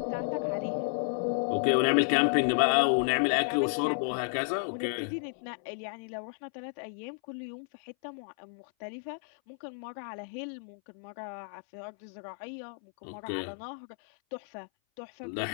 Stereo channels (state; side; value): silent; right; 57 dB below the other